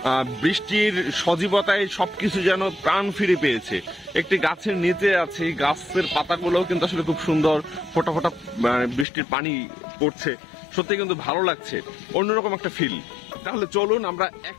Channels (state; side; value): drops out; right; at 9.1 s